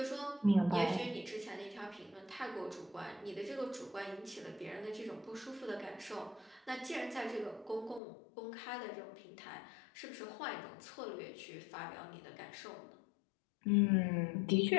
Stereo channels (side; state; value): right; drops out; at 8.0 s